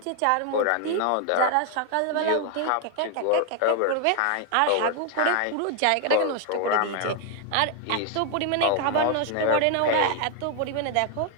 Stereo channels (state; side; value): different; both; correlation 0.00